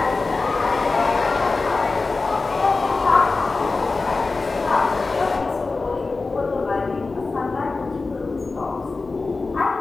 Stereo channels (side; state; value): right; quieter; 3.8 dB